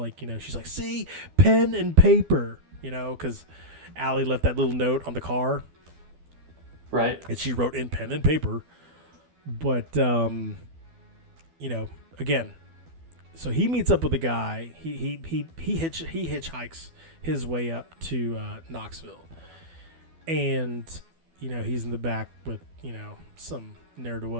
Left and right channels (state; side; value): late; left; 12 ms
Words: she's like, see, pen and paper, because Allie left that little note on the car. Right. And she wrote in pen and paper. But, again, so he meets up with a guy. He hitchhikes his way up to Knoxville. And, he's in the back with, some